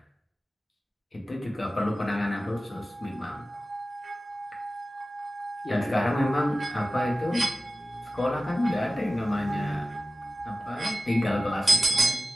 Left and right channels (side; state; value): both; normal; correlation 0.96